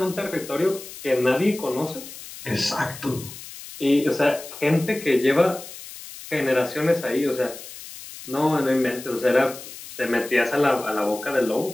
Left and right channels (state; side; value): noise; left; hiss, 14 dB below the sound